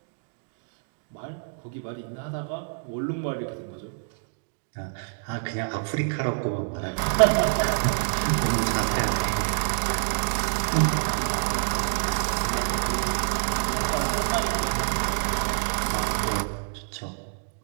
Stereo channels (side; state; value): left; silent; digital silence